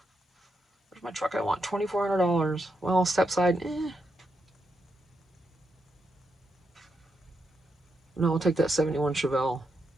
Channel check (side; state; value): both; normal; correlation 0.83